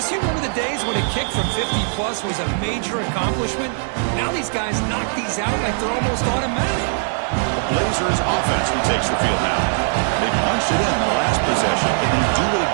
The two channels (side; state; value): left; silent; digital silence